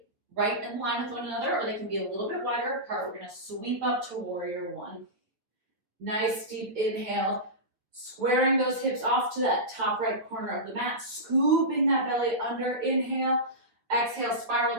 right in line with one another, or they can be a little bit wider apart. We're gonna sweep up to warrior one. Nice deep inhale, Squaring those hips off to that top right corner of the mat, scooping that belly under, inhale, exhale, spiral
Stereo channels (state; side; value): late; left; 9.2 ms